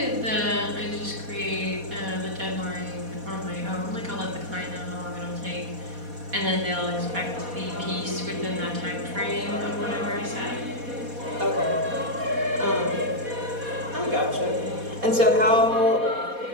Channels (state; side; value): late; left; 4.2 ms